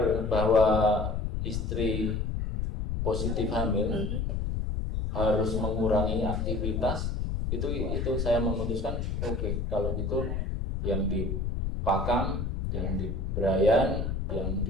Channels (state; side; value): noise; left; rumble, 1 dB below the sound